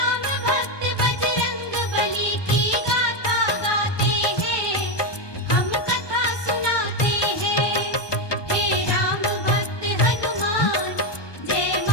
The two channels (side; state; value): right; late; 1.2 ms